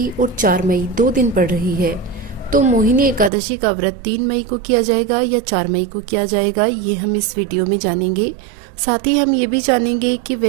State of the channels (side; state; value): left; drops out; at 3.3 s